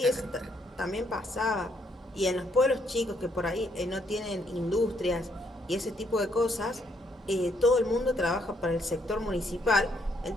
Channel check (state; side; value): normal; both; correlation 0.72